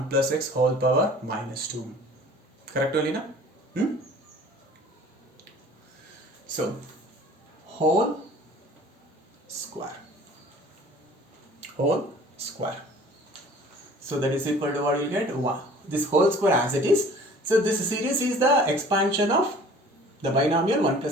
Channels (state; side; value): normal; both; correlation 0.48